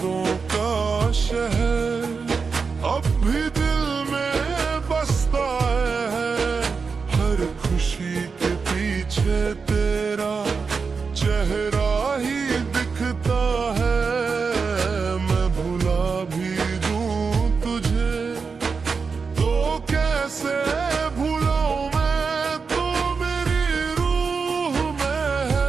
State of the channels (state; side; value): quieter; left; 5.1 dB